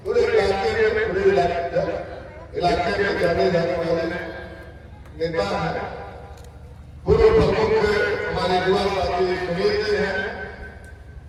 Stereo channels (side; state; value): both; identical; correlation 1.00